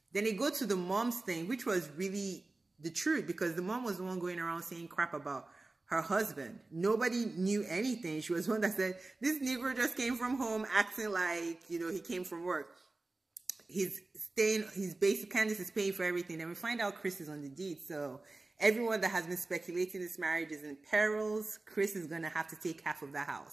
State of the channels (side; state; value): left; quieter; 3.2 dB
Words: Then they go to the mom's thing, which was really the truth, because the mom was the one going around saying crap about her husband. Nobody knew anything. She was one that said, this Negro just came from home acting like, you know, he came from work. He's basic, Candice is paying for everything. And we find out Chris is on the deed. So everyone that has been speculating this marriage is in perils. Chris is going to have to take half of the